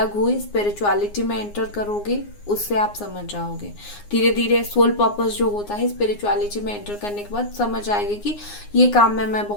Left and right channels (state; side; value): late; right; 9.7 ms